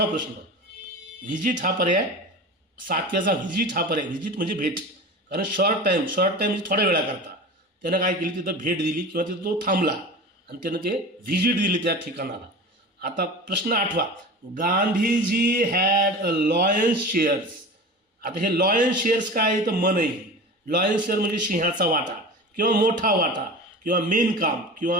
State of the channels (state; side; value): normal; both; correlation 0.33